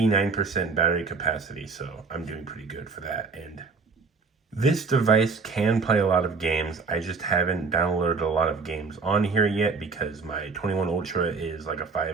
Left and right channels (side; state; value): left; quieter; 4.7 dB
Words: battery capacity, so I'm doing pretty good for that. And this device can play a lot of games. I just haven't downloaded a lot of games on here yet because my 21 Ultra is like a